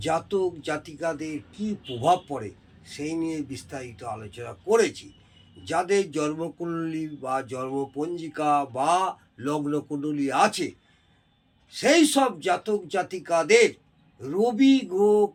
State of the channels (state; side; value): identical; both; correlation 1.00